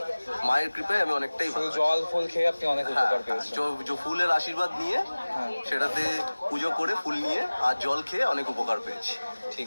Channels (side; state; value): both; inverted; correlation -1.00